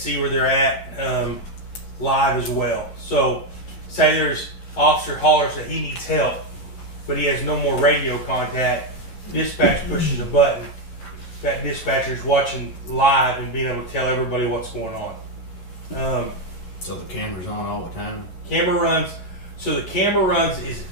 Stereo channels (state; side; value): late; right; 11 ms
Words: where they're at live as well. So say there's officer hollers that he needs help, but he has no more radio contact. Dispatch pushes a button. That dispatcher's watching live and being able to tell everybody what's going on. So the camera's on all the time? Camera runs. So the camera runs is